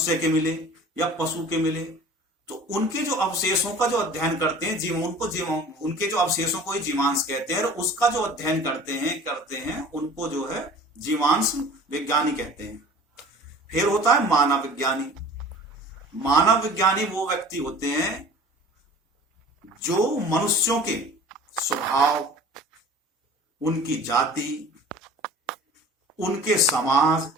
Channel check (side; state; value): both; normal; correlation 0.44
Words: के मिले या पशु के मिले, तो उनके जो अवशेषों का जो अध्ययन करते हैं उनके जो अवशेषों को ही जीवांश कहते हैं। और उसका जो अध्ययन करते हैं उनको जो है जीवांश विज्ञानी कहते हैं। फिर होता है मानव विज्ञानी। मानव विज्ञानी वो व्यक्ति होते हैं जो मनुष्यों के स्वभाव, उनकी जाति, उनके समाज,